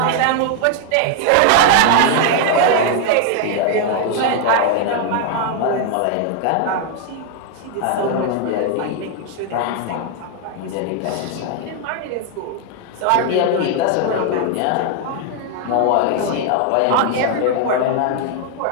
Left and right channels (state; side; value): different; both; correlation 0.00